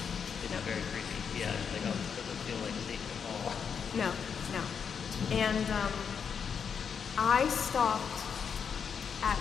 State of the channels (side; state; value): right; quieter; 6.8 dB